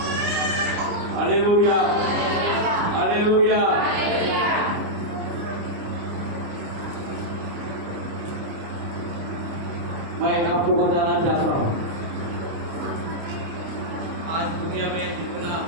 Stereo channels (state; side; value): late; left; 29 ms